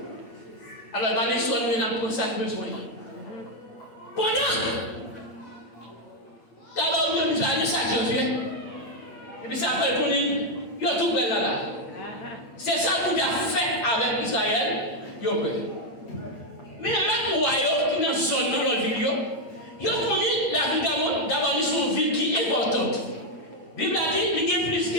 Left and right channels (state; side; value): late; right; 8.6 ms